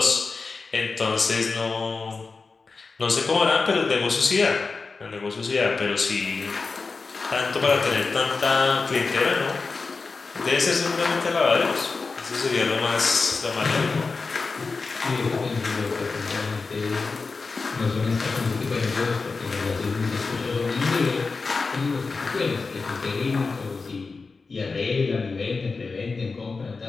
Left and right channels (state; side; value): quieter; right; 4.3 dB